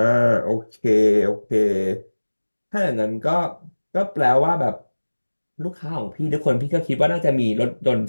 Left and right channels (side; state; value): both; inverted; correlation -1.00